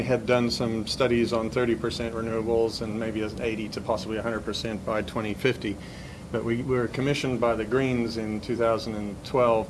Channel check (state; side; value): identical; both; correlation 1.00